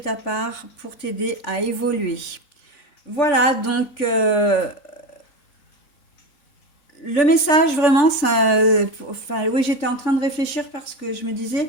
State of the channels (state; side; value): late; right; 3.9 ms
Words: part pour t'aider à évoluer. Voilà, donc le message vraiment, ça, enfin, oui, j'étais en train de réfléchir parce que je me disais,